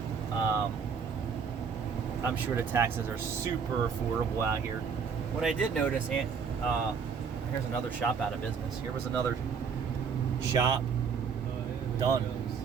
I'm sure the taxes are super affordable out here. What I did notice, here's another shop out of business. Here was another shop done,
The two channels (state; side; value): quieter; left; 6.2 dB